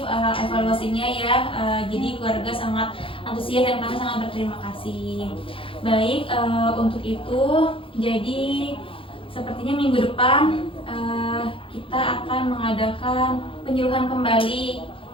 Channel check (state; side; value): late; right; 0.26 ms